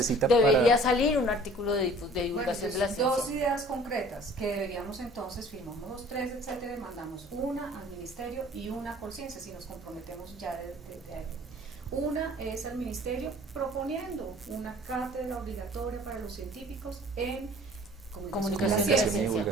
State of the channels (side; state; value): both; normal; correlation 0.50